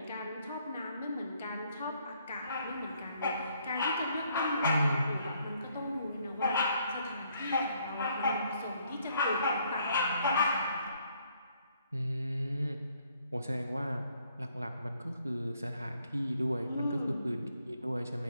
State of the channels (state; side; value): inverted; both; correlation -0.68